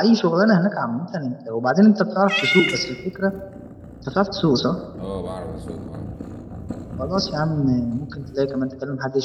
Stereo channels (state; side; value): identical; both; correlation 1.00